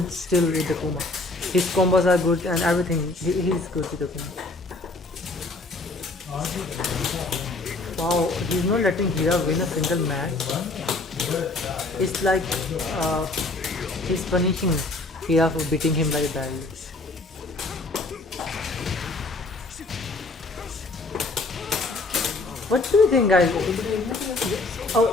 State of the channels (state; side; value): quieter; right; 3.2 dB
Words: still with Akuma. His combos are good and everything. He's good with Akuma. Wow, he's not letting Hira win a single match. It's like he's punishing Hira for beating him very badly. What do you think, guys?